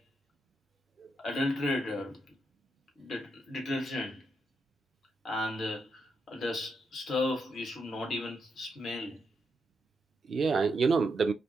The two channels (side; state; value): both; normal; correlation 0.82